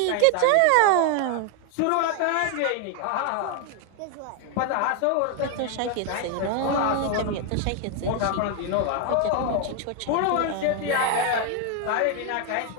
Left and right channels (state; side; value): different; both; correlation 0.01